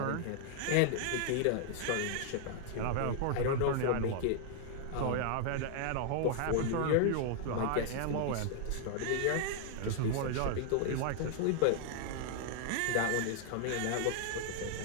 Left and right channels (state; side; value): different; both; correlation 0.00